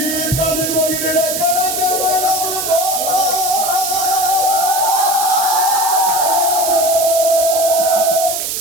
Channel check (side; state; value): right; noise; hiss, 2 dB below the sound